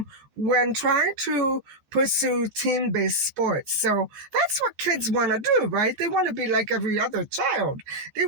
when trying to pursue team-based sports. So that's what kids want to do, right? They want to be like every other child. They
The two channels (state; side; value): late; left; 14 ms